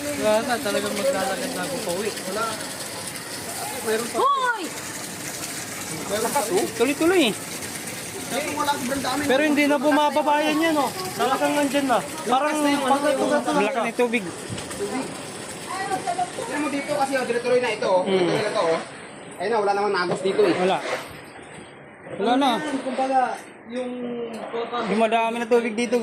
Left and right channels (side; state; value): both; identical; correlation 1.00